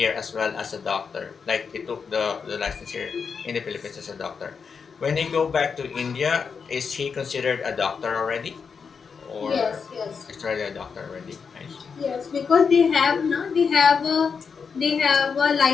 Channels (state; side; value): quieter; right; 5.8 dB